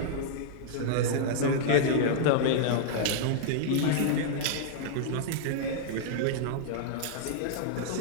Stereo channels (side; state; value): both; different; correlation -0.02